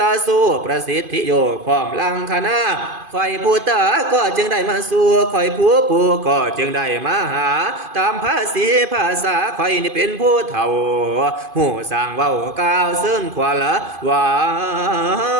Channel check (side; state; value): left; late; 2.5 ms